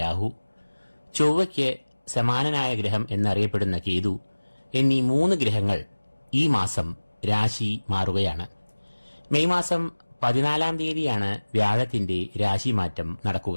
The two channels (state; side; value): inverted; both; correlation -1.00